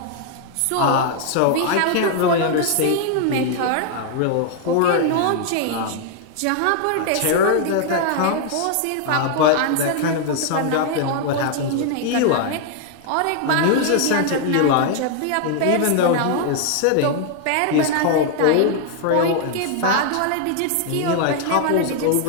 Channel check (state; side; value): different; both; correlation 0.00